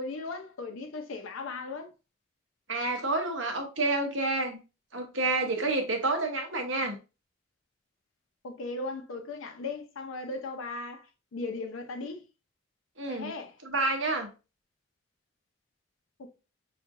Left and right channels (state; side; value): normal; both; correlation -0.12